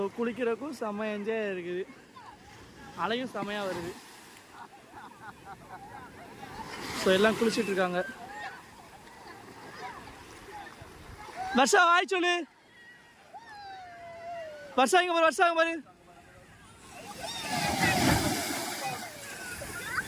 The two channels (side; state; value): both; identical; correlation 1.00